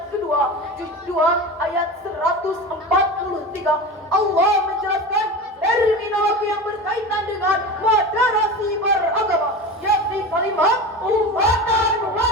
kedua juz 2 ayat 143. Allah menjelaskan terminologi yang berkaitan dengan moderasi beragama, yakni kalimat ummatan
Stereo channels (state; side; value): normal; both; correlation 0.28